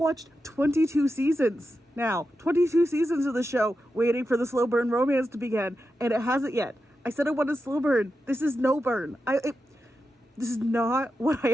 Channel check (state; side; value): normal; both; correlation 0.89